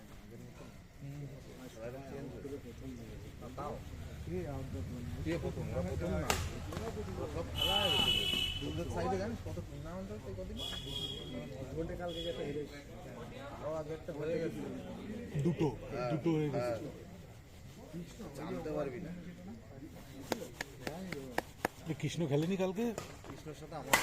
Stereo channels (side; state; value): both; identical; correlation 1.00